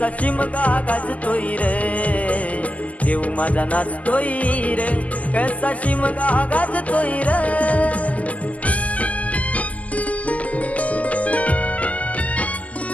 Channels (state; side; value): late; right; 0.073 ms